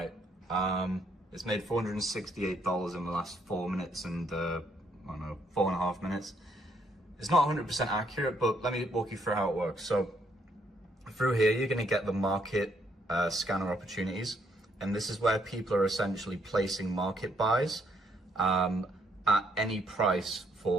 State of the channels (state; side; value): normal; both; correlation 0.72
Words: It's made $468 in the last 4 minutes and, I don't know, 4.5 minutes. It's not 100% accurate, but let me walk you through how it works. So, through here, you're gonna get the market scanner opportunities, and this is where people are essentially placing market buys at any price